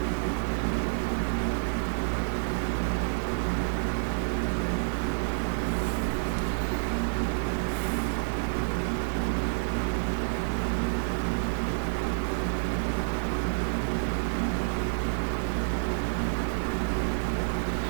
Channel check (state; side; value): silent; left; 56 dB below the other